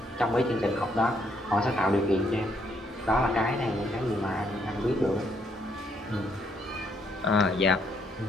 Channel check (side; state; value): both; normal; correlation 0.72